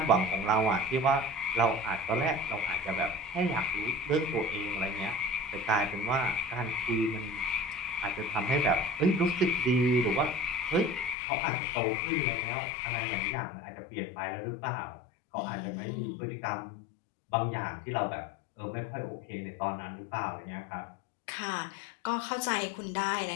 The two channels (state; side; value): drops out; right; at 11.2 s